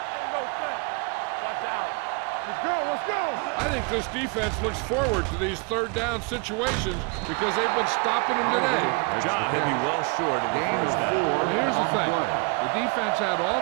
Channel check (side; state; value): left; quieter; 32.8 dB